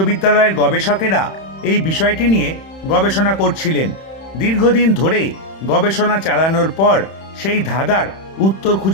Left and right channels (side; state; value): right; late; 31 ms